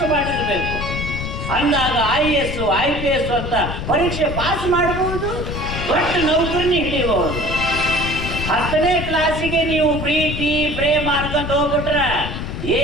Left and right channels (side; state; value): left; noise; rumble, 5 dB below the sound